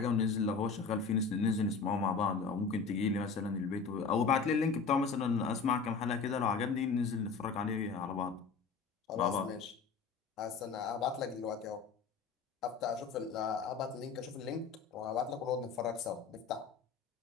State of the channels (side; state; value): right; quieter; 5.2 dB